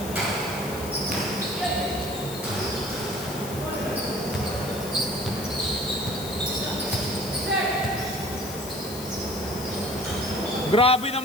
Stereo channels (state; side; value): noise; left; hiss, 11 dB below the sound